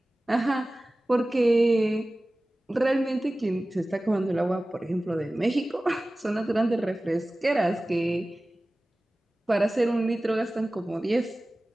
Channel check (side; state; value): both; normal; correlation 0.97